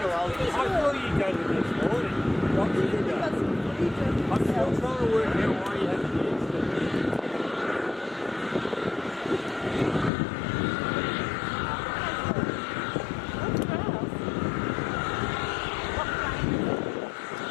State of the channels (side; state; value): right; drops out; at 10.1 s